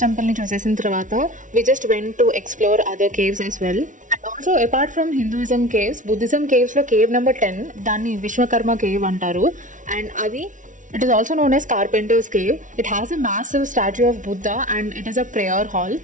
టెంపుల్ని చూసేసిన తర్వాత we just went to explore other caves as well. And also apart from Hinduism caves, Buddhism కేవ్స్లో cave number 10 దాన్ని Vishwakarma cave అంటారు. అండ్ అది it is also known as Carpenter's Cave. It has a massive statue of Buddha and it is a prayer hall.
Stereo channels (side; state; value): left; late; 0.37 ms